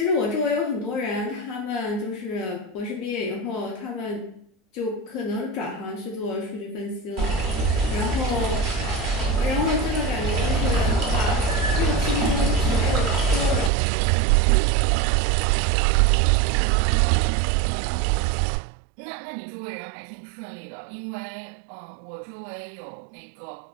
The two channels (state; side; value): drops out; left; at 13.7 s